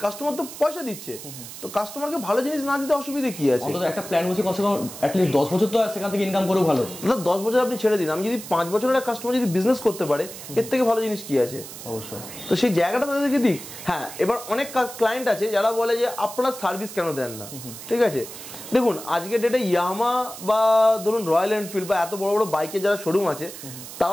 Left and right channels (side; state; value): right; noise; hiss, 12 dB below the sound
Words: কাস্টমার তো পয়সা দিচ্ছে, তো কাস্টমারকে ভালো জিনিস না দিতে অসুবিধা কি আছে? অন্তত একটা প্ল্যান বসে কমসে কম অ্যাটলিস্ট 10 বছর তো সেখান থেকে ইনকাম করেও ভালো। দাদা 10 বছর আপনি ছেড়ে দিন, আমি যদি 5 বছরের একটা কাস্টমার যদি বিজনেস করতে পারে এর থেকে ভালো জিনিস কি আছে? অবশ্যই। তো সেই জায়গাটা তাদেরকে দিক। হ্যাঁ, এবার অনেক ক্লায়েন্ট আছে যারা বলে যে আপনারা সার্ভিস কেন দেন না, ঠিক আছে। দেখুন আজকের ডেটে ইয়ামাহা বা ধরুন রয়্যাল এনফিল্ড বা এত বড় বড় বাইকের যারা শোরুম আছে